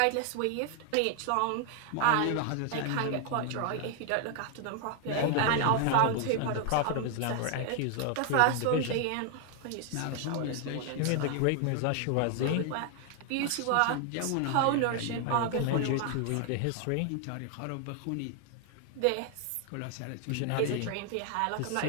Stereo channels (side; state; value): both; different; correlation 0.00